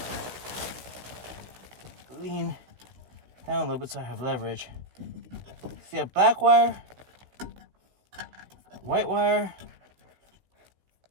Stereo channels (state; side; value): late; left; 16 ms